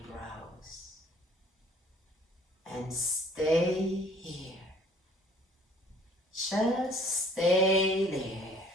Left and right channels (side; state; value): both; normal; correlation 0.55